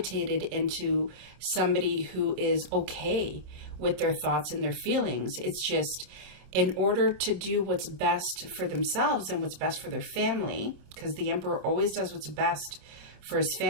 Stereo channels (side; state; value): left; late; 26 ms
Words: into somebody who is okay with their thoughts and their feelings. It's just in order to do what's best for themselves and what's best for their family, because the Emperor always does what's best for his